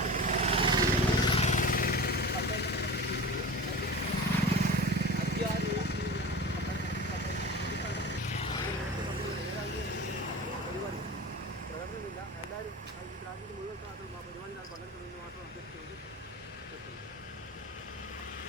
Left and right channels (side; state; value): both; normal; correlation 0.33